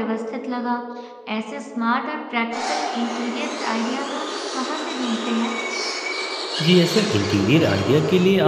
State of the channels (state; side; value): identical; both; correlation 1.00